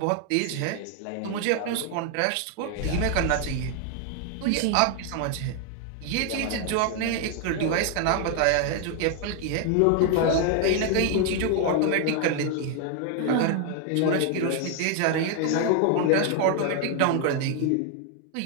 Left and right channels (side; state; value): both; different; correlation 0.01